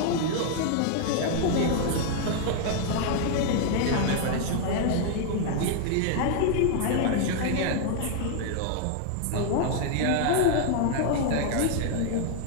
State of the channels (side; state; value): both; different; correlation 0.00